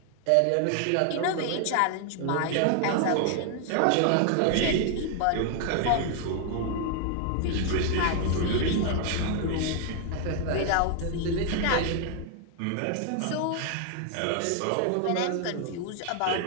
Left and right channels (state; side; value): different; both; correlation 0.00